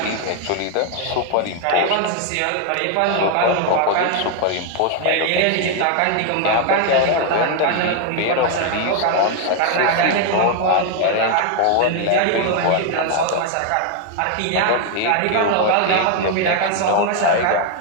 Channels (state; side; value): different; both; correlation 0.00